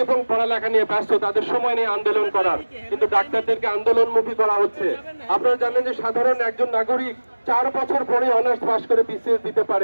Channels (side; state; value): both; inverted; correlation -1.00